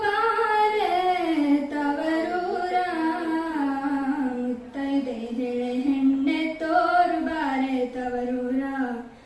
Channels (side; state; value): both; identical; correlation 1.00